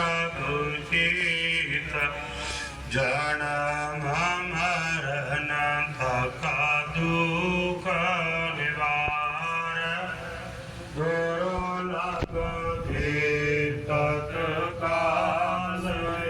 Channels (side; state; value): both; identical; correlation 1.00